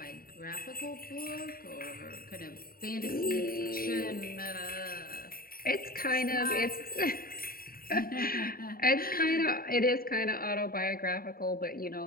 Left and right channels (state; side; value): late; right; 0.43 ms